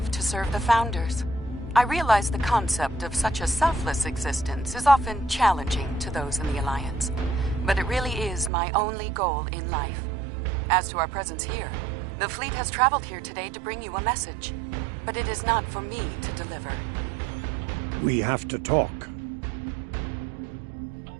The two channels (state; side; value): drops out; left; at 8.5 s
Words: to serve the Founders. I realize the concept of such a selfless existence is often challenging to those in the Alliance, but it really is my only goal in life. As to our presence here, the fleet has traveled here today to bring you a message, but it is not for me to deliver. We have to talk.